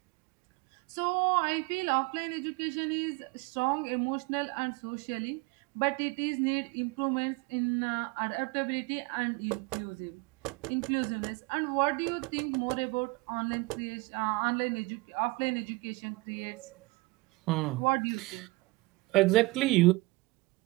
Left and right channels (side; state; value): left; quieter; 23.8 dB